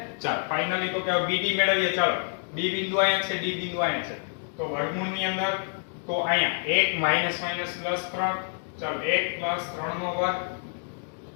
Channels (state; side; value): silent; right; 57 dB below the other